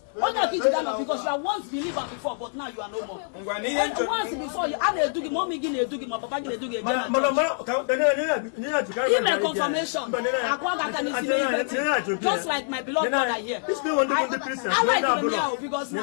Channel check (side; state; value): right; silent; 58 dB below the other